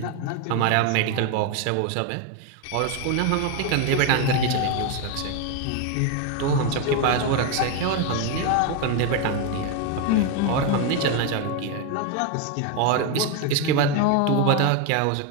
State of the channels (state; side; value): different; both; correlation 0.02